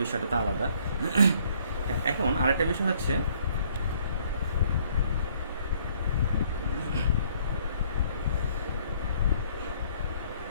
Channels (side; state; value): both; inverted; correlation -0.63